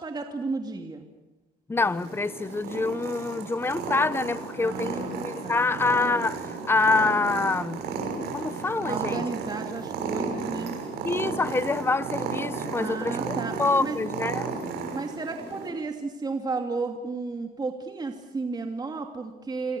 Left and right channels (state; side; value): normal; both; correlation 0.60